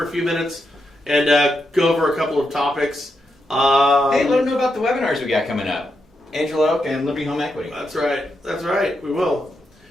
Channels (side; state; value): both; normal; correlation 0.84